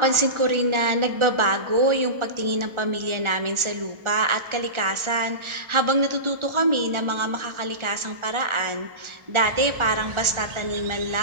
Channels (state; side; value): late; left; 1.4 ms